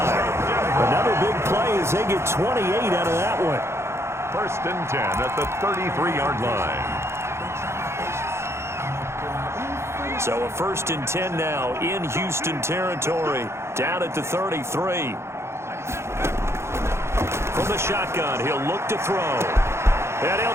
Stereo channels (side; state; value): left; late; 0.13 ms